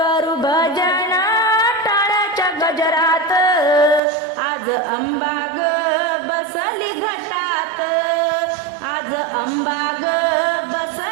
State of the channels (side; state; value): left; drops out; at 4.0 s